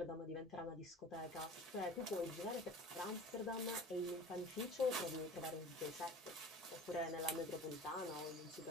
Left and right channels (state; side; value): normal; both; correlation 0.41